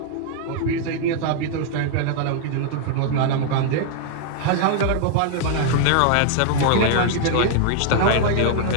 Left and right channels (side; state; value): both; different; correlation 0.00